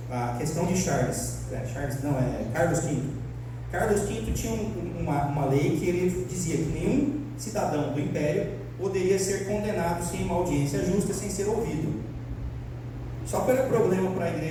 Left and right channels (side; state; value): both; identical; correlation 1.00